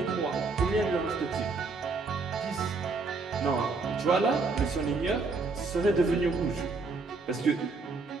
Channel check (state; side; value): quieter; left; 4.0 dB